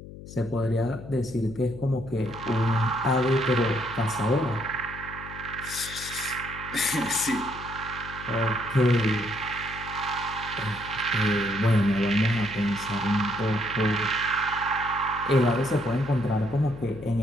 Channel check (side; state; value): left; noise; hum, 14 dB below the sound